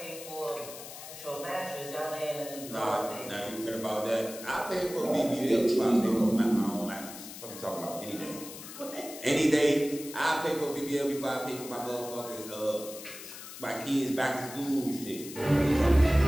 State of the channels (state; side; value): noise; left; hiss, 12 dB below the sound